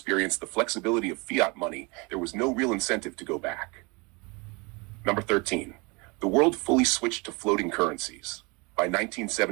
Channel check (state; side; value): quieter; left; 28.4 dB